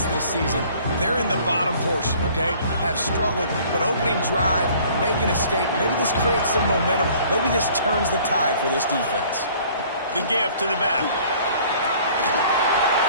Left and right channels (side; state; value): both; inverted; correlation -0.54